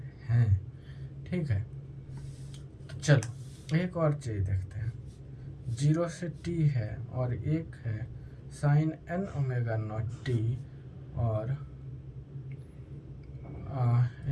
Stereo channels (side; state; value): both; identical; correlation 1.00